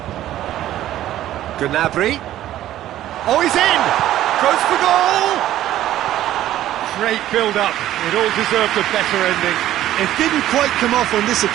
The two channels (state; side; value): quieter; left; 13.2 dB